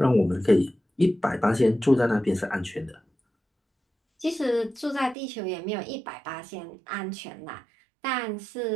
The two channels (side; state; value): left; drops out; at 5.2 s